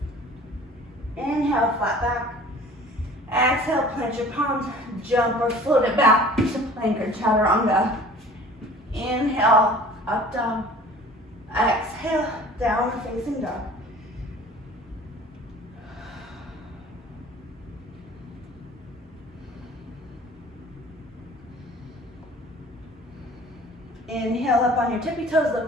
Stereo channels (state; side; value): normal; both; correlation 0.47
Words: Inhale, flat back. Exhale, plant your palms, jump or float it back to plank or chaturanga. Inhale, up dog. Exhale, downward facing dog. Inhale up on your tippy toes,